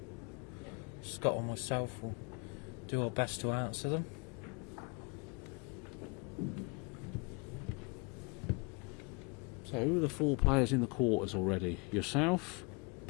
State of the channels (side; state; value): right; quieter; 31.5 dB